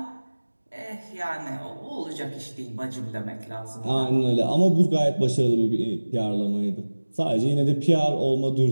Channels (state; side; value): inverted; both; correlation -1.00